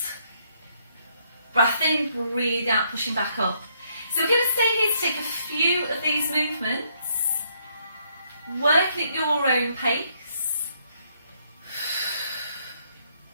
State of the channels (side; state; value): both; inverted; correlation -0.71